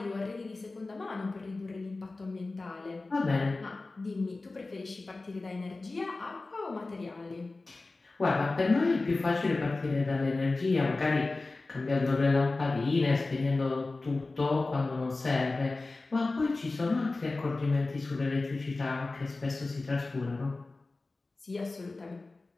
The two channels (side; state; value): right; quieter; 3.4 dB